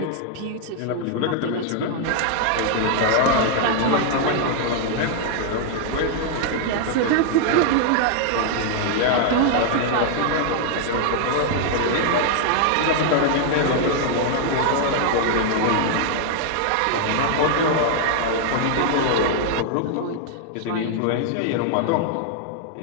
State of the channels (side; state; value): both; different; correlation 0.00